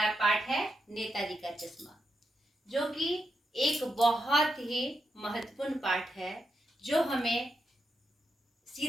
पाठ है नेताजी का चश्मा, जो कि एक बहुत ही महत्वपूर्ण पाठ है, जो हमें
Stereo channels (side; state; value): both; normal; correlation 0.85